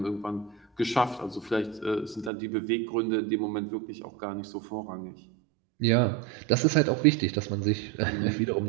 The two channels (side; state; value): left; drops out; at 2.3 s